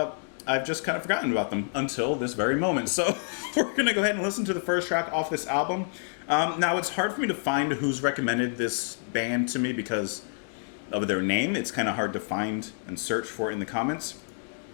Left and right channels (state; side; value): silent; right; digital silence